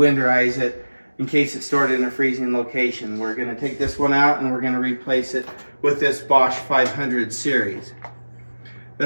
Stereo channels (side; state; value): both; inverted; correlation -1.00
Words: it in case it's stored in a freezing location. We're going to take this one out and we're going to replace it with this Bosch 500 series.